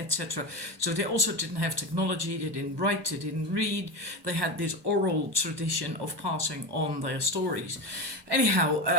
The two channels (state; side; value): late; left; 1.2 ms